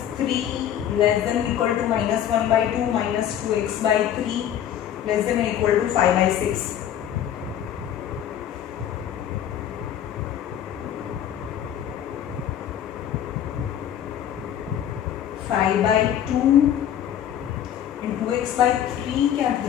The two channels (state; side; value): quieter; right; 10.3 dB